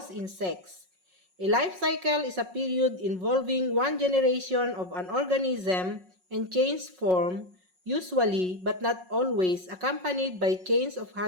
insects. A life cycle is a period involving one generation of an organism and change form, usually but not always accompanied by change of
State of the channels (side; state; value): left; late; 5.5 ms